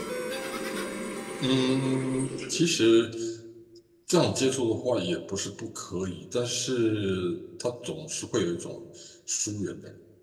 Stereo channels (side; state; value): both; identical; correlation 1.00